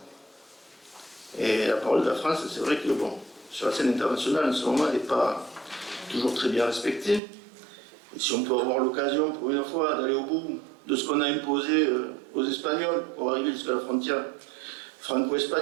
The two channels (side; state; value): left; drops out; at 7.2 s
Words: Et la parole de la France, c'est vrai que, bon, sur la scène internationale, en ce moment, elle n'est pas toujours très bien respectée. Et si on peut avoir l'occasion, pour une fois, d'aller au bout de ce qu'on a imposé aux Espagnols pour arriver jusqu'à la frontière